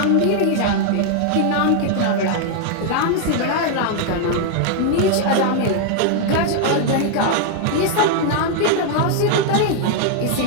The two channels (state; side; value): different; both; correlation 0.00